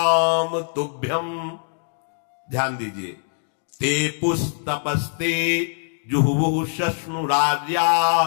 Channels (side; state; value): right; silent; digital silence